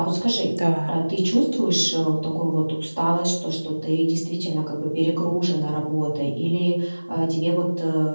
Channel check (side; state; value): both; inverted; correlation -1.00